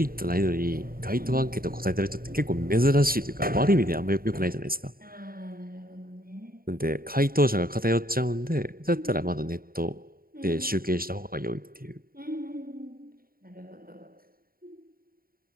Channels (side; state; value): left; late; 0.43 ms